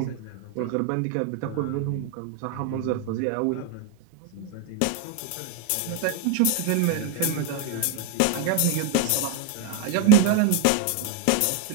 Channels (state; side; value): different; both; correlation 0.01